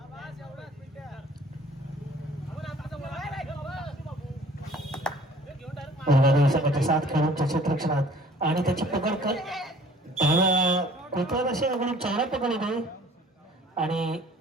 दुर्गादेवी संघाच्या 7 खेळाडूंच्या क्षेत्ररक्षणात आणि त्याची पकड कर डाव्या कोपऱ्यात असे अगदी चौरा पकड होते आणि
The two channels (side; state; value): both; normal; correlation 0.51